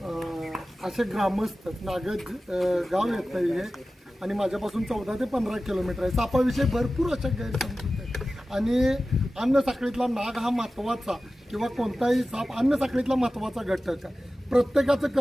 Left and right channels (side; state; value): both; normal; correlation 0.95